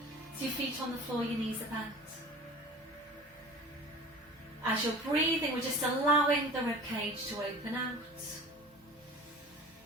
so your feet on the floor, your knees are bent. As you're breathing, we're just allowing the ribcage to open out.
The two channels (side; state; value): both; normal; correlation 0.40